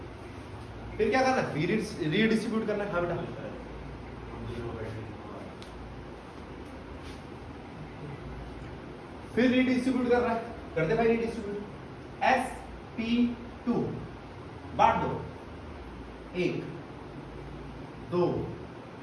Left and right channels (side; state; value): both; identical; correlation 1.00